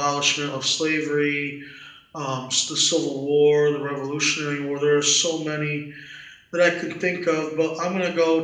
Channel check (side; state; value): both; identical; correlation 1.00